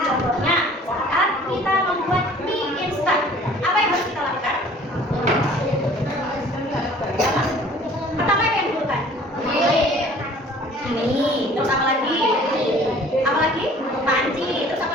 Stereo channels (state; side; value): normal; both; correlation 0.51